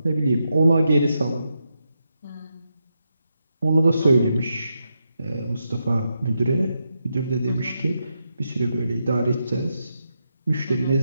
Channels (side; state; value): both; inverted; correlation -0.85